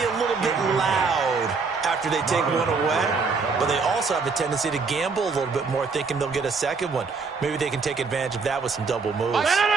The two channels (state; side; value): quieter; left; 4.7 dB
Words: a little bit loud after they take one away, but they also have a tendency to gamble a little bit more, thinking they'll get a second one. Maybe they can take advantage of that with some double moves.